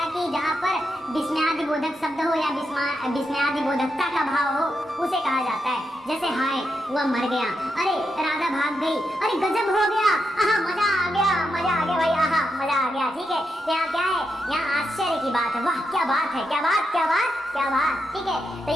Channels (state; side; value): normal; both; correlation 0.84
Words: है कि जहाँ पर विस्मयादि बोधक शब्द हो या विस्मयादि बोधकता का भाव हो, उसे कहा जाता है। जैसे हाय वह मर गया, अरे राधा भाग गई, अरे गजब हो गया, आहा मजा आ गया, मजा आ गया भाई, आहा मजा आ गया। ठीक है, तो यहाँ क्या है, यहाँ आश्चर्य की बात है, वाह क्या बात है, क्या बात क्या बात क्या बात। ठीक है, तो